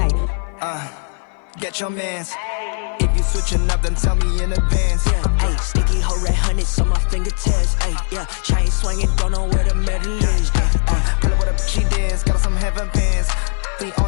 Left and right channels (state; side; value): silent; right; 57 dB below the other